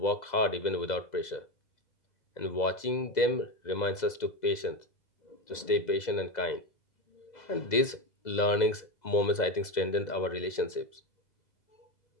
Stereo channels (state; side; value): late; right; 2.0 ms